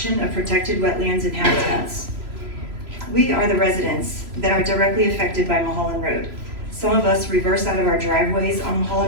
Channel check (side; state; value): left; late; 3.0 ms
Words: of protected wetlands and habitats. We are the residents that are directly affected by Mulholland Road. Some of us reverse out of our driveways on